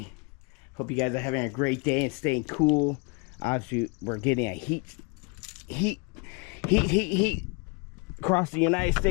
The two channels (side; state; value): right; quieter; 31.3 dB